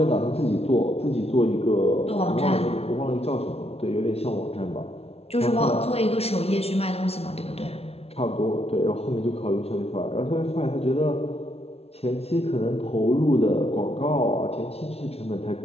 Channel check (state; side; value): late; right; 0.30 ms